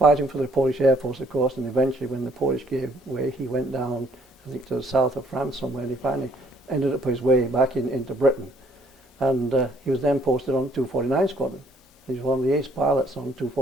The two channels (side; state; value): both; normal; correlation 0.63